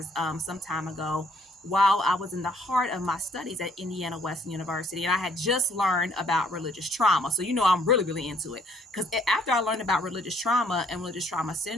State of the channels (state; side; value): normal; both; correlation 0.64